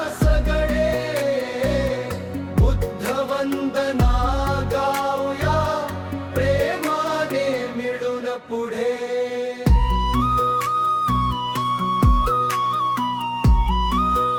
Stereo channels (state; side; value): identical; both; correlation 1.00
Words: सगळे, बुद्ध वंदना गाऊया प्रेमाने मिळून पुढे।